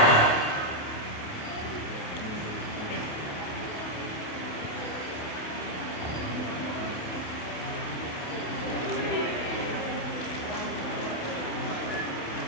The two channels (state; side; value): late; right; 28 ms